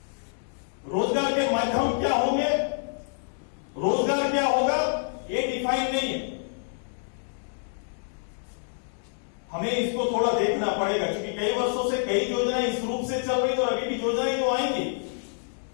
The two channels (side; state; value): right; silent; digital silence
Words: रोजगार के माध्यम क्या होंगे, रोजगार क्या होगा, ये डिफाइन नहीं है। हमें इसको थोड़ा देखना पड़ेगा, क्योंकि कई वर्षों से कई योजनाएं इस रूप से चल रही और अभी भी योजनाएं जो आएंगी